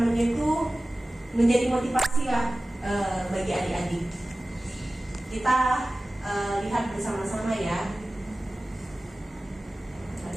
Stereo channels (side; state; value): both; normal; correlation 0.97